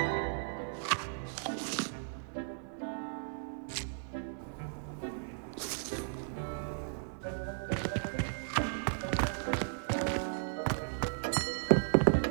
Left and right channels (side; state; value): left; silent; 54 dB below the other